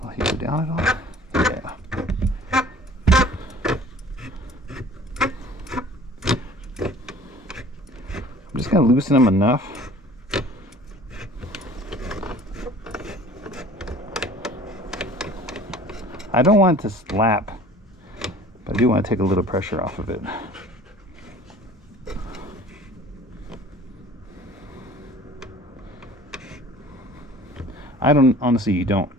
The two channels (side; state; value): both; normal; correlation 0.47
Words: Will he go down at all? Yeah. I'm just going to loosen them enough. I don't want it to slap, but I do want to take a little pressure off of it. I honestly don't